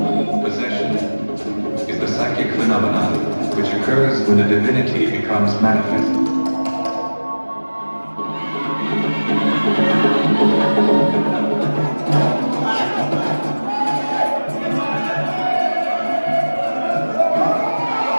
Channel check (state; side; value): inverted; both; correlation -1.00